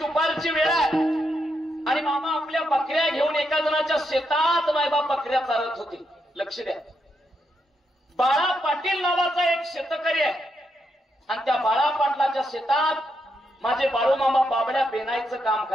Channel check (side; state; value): both; normal; correlation 0.81